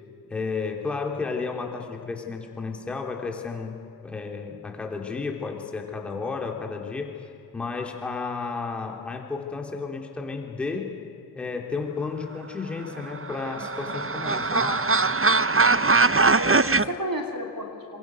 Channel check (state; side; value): normal; both; correlation 0.10